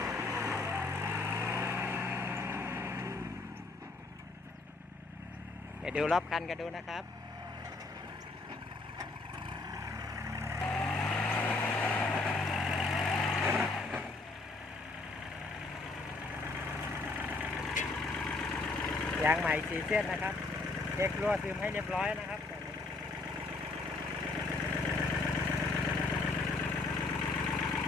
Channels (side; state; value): right; quieter; 3.5 dB